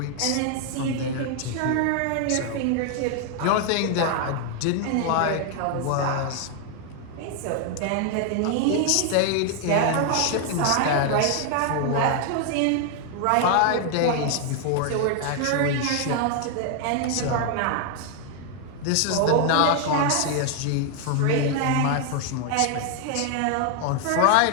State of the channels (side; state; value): both; different; correlation 0.00